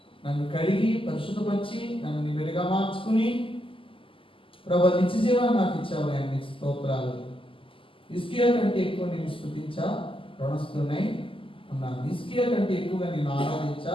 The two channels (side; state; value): right; late; 0.25 ms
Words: నన్ను కడిగి పరిశుద్ధపరిచి నన్ను నీ వెలుగా మార్చుకుని ప్రభువా నిత్య జీవాన్ని నాకు ఇచ్చావు. అన్ని స్తోత్రాలు. హిజ్కియా కంటే ఎక్కువ నేను స్తుతించా రుణస్థున్నై ఉన్నాను. హిజ్కియా కంటే ఎక్కువగా నేను ఆరాధించా